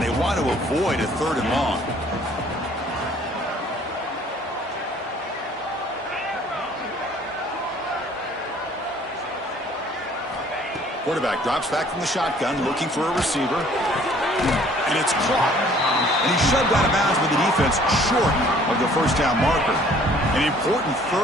want to avoid a 3rd and long. Quarterback drops back from the shotgun, looking for a receiver. And it's caught. And he's shoved out of bounds with the defense short of the 1st down marker. An important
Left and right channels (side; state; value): both; normal; correlation 0.56